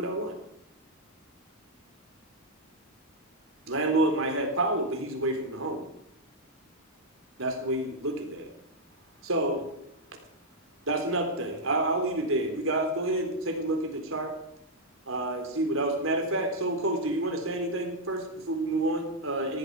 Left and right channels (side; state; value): both; normal; correlation -0.02